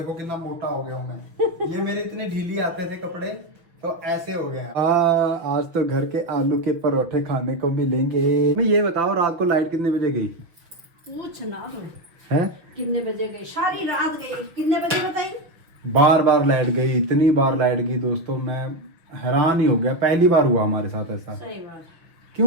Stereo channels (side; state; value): left; late; 6.1 ms